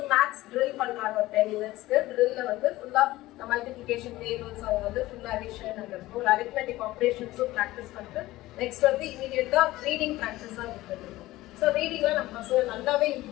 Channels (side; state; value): right; quieter; 17.4 dB